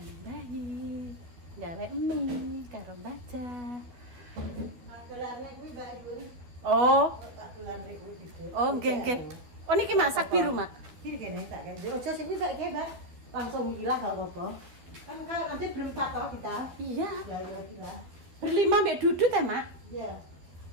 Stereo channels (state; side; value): late; left; 12 ms